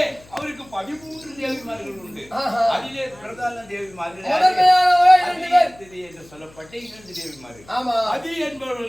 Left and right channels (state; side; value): noise; left; hum, 25 dB below the sound